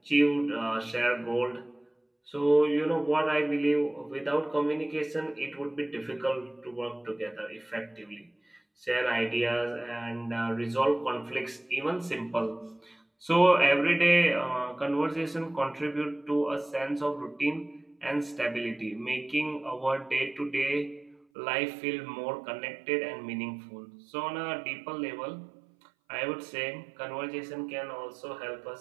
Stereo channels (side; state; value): left; drops out; at 21.2 s